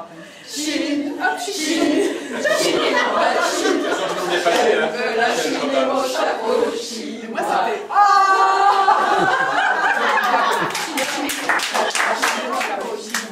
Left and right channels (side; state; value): both; identical; correlation 1.00